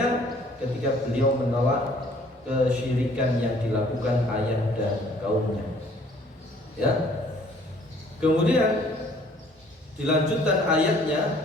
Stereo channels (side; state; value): both; normal; correlation 0.58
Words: ketika beliau menolak kesyirikan yang dilakukan ayah dan kaumnya. Ya. Kemudian dilanjutkan ayatnya,